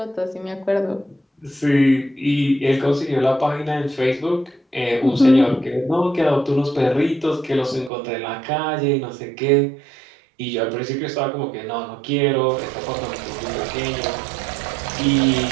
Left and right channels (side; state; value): left; drops out; at 7.9 s